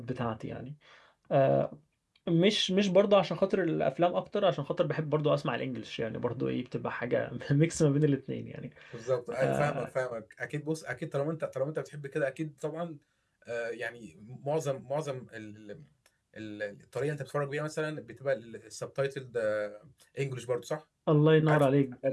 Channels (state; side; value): identical; both; correlation 1.00